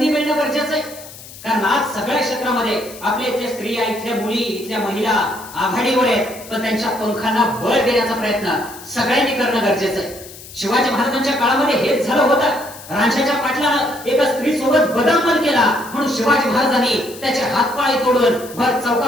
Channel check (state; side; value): noise; left; hiss, 17 dB below the sound